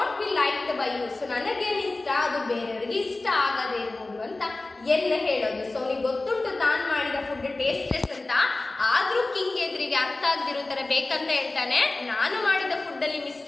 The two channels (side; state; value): right; quieter; 3.1 dB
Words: be liked by you. So ನನಗೇನು ಇಷ್ಟ ಅದು ಬೇರೆಯವರಿಗೆ ಇಷ್ಟ ಆಗದೇ ಇರ್ಬೋದು ಅಂತ ಎಲ್ಲ ಹೇಳೋದು. ಸೊ ಅವನಿಗೆ ಗೊತ್ತುಂಟು ತಾನು ಮಾಡಿದ ಫುಡ್ ಟೇಸ್ಟ್ಲೆಸ್ ಅಂತ, ಆದ್ರೂ ಕಿಂಗ್ ಎದುರಿಗೆ ಅರ್ಥ ಆಗದಿರೋ ತರ ಬೇಕಂತ ಹೇಳ್ತಾನೆ, ನಾನು ಮಾಡಿದ ಫುಡ್ ಅಲ್ಲಿ